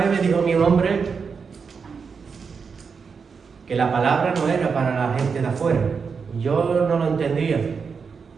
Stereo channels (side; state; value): left; quieter; 5.6 dB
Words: me dijo un hombre que la palabra no era para la gente de afuera. Yo no lo entendía.